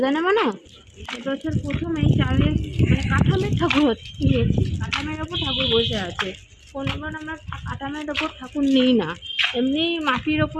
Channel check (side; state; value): both; identical; correlation 1.00